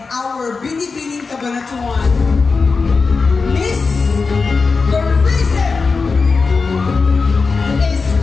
our Binibining Cabanatuan Miss Tourism is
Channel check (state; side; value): quieter; right; 4.5 dB